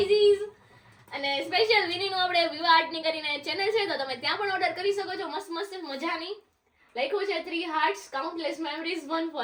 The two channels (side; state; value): both; identical; correlation 1.00